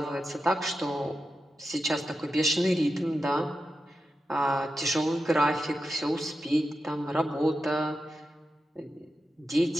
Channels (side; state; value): both; normal; correlation 0.90